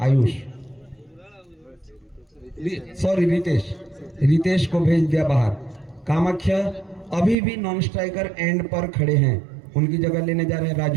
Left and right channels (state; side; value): drops out; left; at 7.4 s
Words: आयुष सॉरी रितेश को भेज दिया बाहर। कामाख्या अभी भी नॉन स्ट्राइकर एंड पर खड़े हैं, उनकी जगह लेने जा रहे हैं